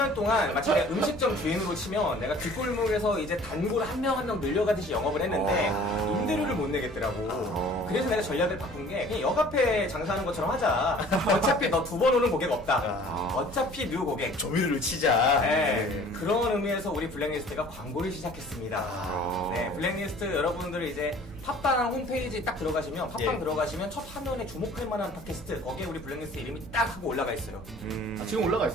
동안 마치 내가 음식점 주인으로 치면 내가 뒷골목에서 이제 단골 한 명 한 명 늘려가듯이 영업을 했는데 임대료를 못 내겠더라고. 그래서 내가 전략을 바꾼 게 그냥 역 앞에 장사하는 것처럼 하자. 어차피 너 2번 오는 고객 없다. 어차피 뉴 고객. 조미료를 치자. 네, 그런 의미에서 우리 블랙리스트가 광고를 시작했습니다. 아. 네, 블랙리스트 여러분들 이제 팟빵 홈페이지 딱 들어가시면 팟빵 예. 들어가시면 첫 화면에 주목할 만한 팟캐스트 거기에 우리 블랙리스트 이름이 딱 하고 올라가 있어요. 아, 지금 올라가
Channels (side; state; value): both; normal; correlation 0.50